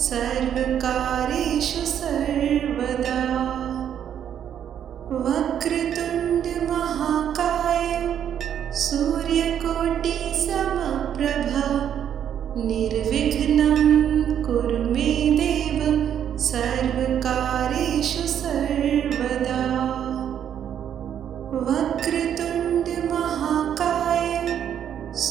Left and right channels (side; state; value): left; quieter; 9.4 dB